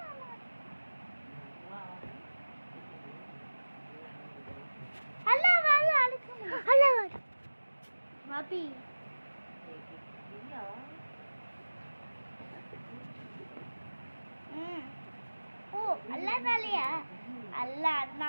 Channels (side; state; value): both; inverted; correlation -1.00